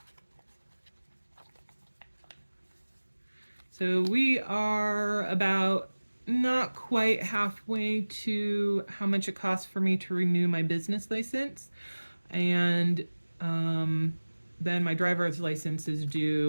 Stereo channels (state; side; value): inverted; both; correlation -1.00